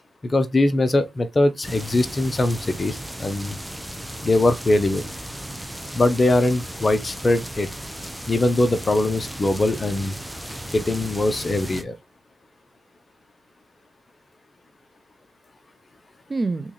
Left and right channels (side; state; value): both; normal; correlation 0.92